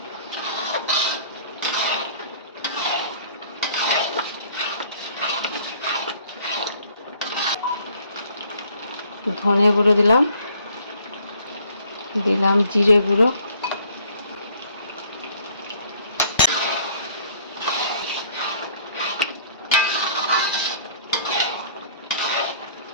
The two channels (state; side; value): inverted; both; correlation -0.58